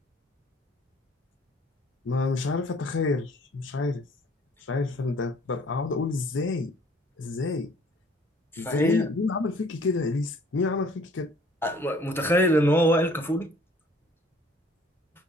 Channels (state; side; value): normal; both; correlation 0.55